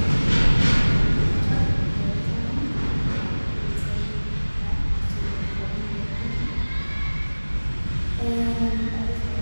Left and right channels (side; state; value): both; inverted; correlation -1.00